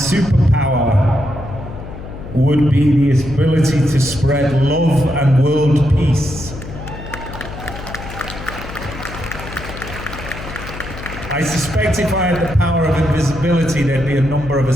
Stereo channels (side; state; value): left; noise; hum, 12 dB below the sound